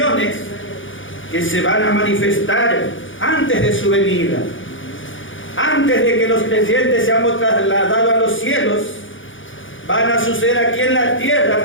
que se van a manifestar antes de su venida. Antes de que los creyentes seamos trasladados a los cielos, van a suceder aquí en la tierra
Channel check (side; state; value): right; late; 0.57 ms